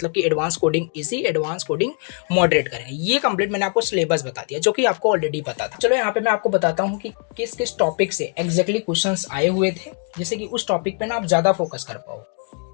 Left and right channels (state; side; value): quieter; right; 39.0 dB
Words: कि advance coding easy, advance coding moderate करें। ये कंप्लीट मैंने आपको सिलेबस बता दिया, जो कि आपको ऑलरेडी पता था। चलो यहाँ पे मैं आपको बताता हूँ कि किस किस टॉपिक से एग्जैक्टली क्वेश्चंस आए हुए थे, जिससे कि उस टॉपिक पे ना आप ज़्यादा फोकस कर पाओ।